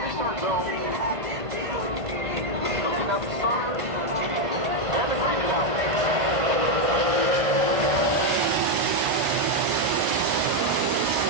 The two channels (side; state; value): left; late; 1.5 ms